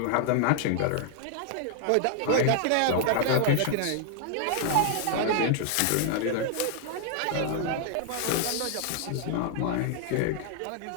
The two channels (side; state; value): both; different; correlation 0.00